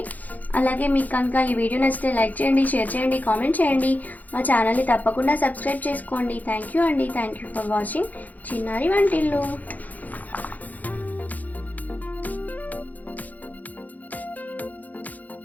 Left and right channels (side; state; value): right; late; 0.080 ms